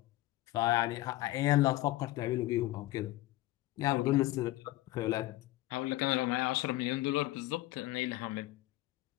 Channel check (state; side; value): quieter; right; 17.1 dB